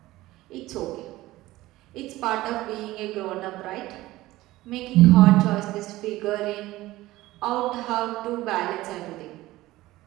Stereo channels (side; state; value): left; quieter; 17.4 dB